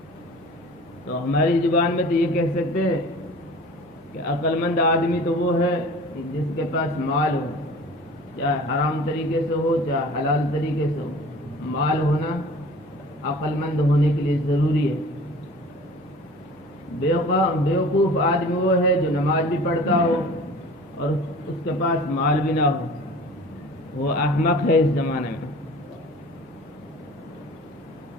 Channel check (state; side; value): noise; right; hum, 29 dB below the sound